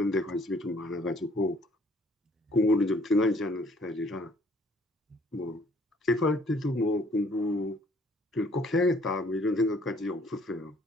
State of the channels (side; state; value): both; normal; correlation 0.61